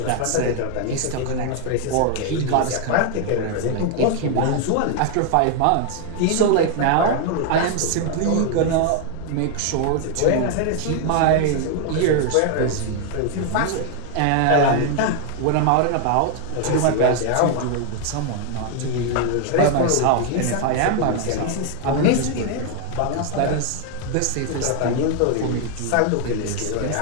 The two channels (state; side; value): different; both; correlation 0.00